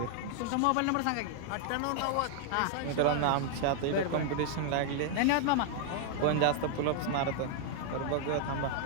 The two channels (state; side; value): different; both; correlation 0.00